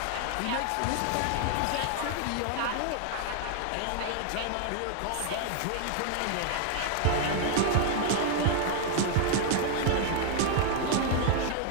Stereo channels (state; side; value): different; both; correlation 0.00